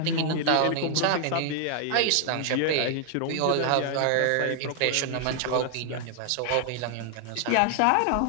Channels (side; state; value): both; different; correlation 0.00